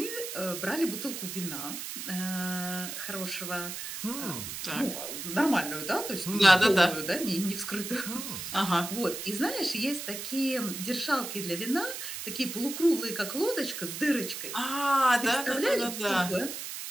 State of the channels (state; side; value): noise; right; hiss, 7 dB below the sound